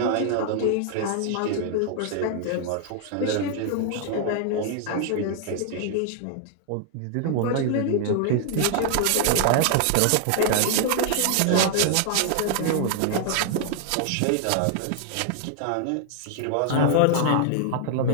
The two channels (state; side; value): different; both; correlation 0.00